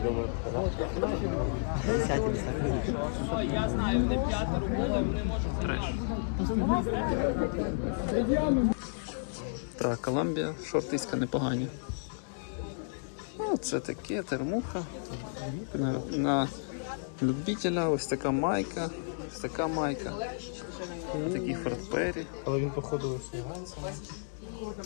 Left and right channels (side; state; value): right; silent; 56 dB below the other